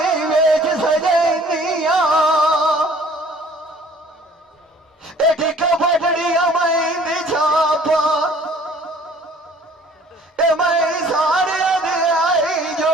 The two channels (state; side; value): normal; both; correlation 0.54